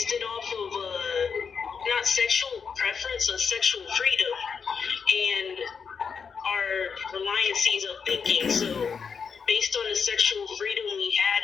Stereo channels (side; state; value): right; quieter; 6.1 dB